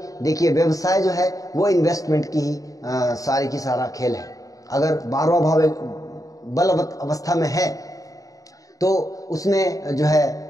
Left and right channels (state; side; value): late; right; 0.17 ms